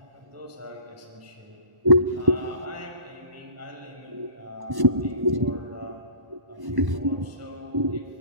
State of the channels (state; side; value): late; left; 1.1 ms